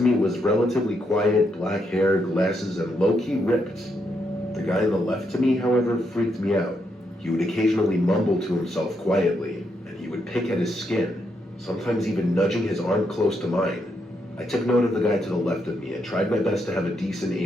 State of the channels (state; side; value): normal; both; correlation 0.79